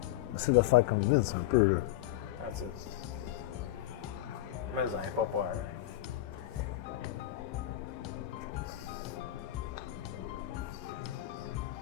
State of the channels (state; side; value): quieter; right; 14.3 dB